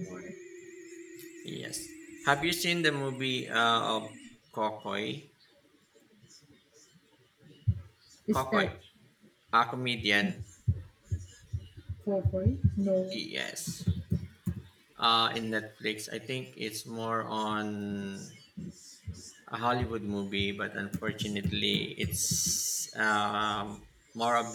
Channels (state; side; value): identical; both; correlation 1.00